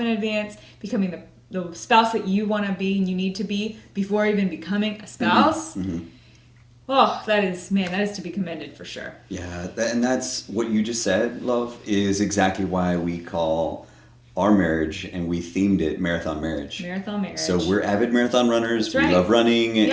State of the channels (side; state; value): both; identical; correlation 1.00